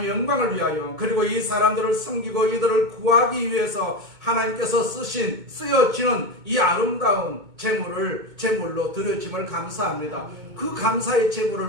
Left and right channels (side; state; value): left; late; 2.2 ms